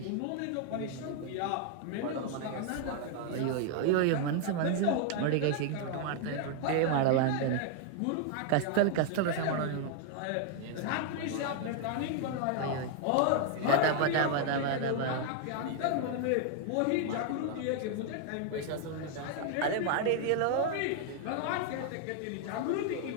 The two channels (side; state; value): both; different; correlation 0.00